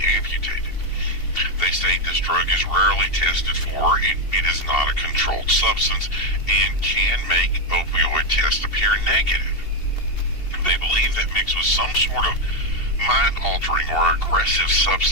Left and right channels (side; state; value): right; late; 2.7 ms